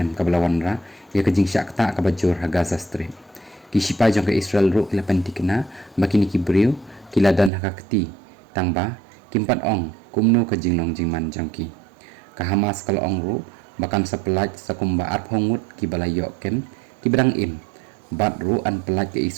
ka bala wanra ya ka jing syak ta ka bajur ha Gaza Strip ki shipa jong ka Israel ru kila pentikna makini ki briu kila dan ha kti tangba kimpat ong kumno ka jing long jing man jong ki ka Hamas kala ong ru bakan sa pelat sa kumba arp hongut ki bala yok kem ki berang im bat ru an pelat ke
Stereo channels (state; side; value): drops out; left; at 7.5 s